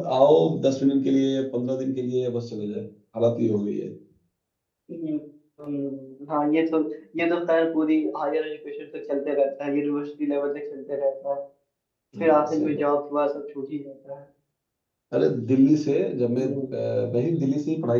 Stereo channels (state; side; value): identical; both; correlation 1.00